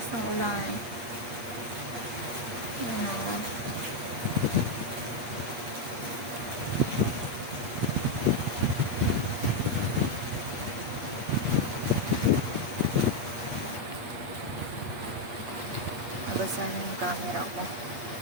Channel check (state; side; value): late; left; 8.5 ms